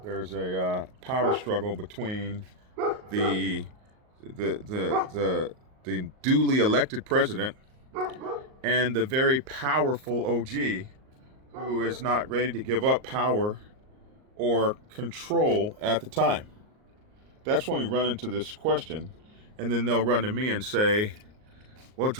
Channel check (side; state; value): left; late; 38 ms